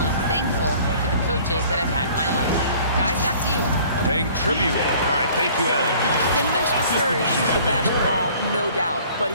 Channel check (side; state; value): both; inverted; correlation -0.52